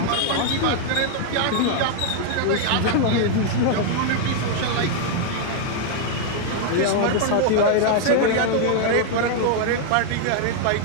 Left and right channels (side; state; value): both; different; correlation 0.00